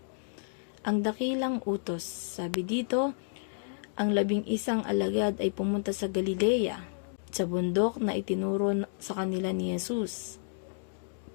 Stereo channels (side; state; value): right; silent; digital silence